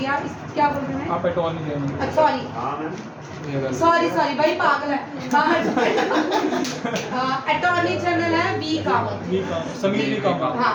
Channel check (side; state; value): both; identical; correlation 1.00